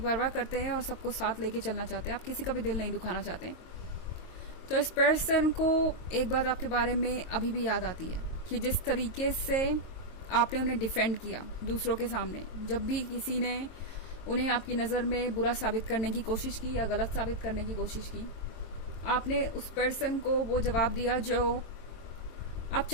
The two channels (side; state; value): right; late; 22 ms